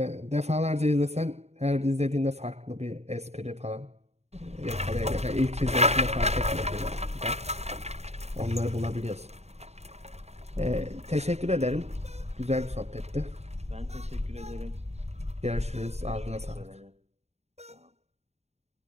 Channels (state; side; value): late; left; 0.31 ms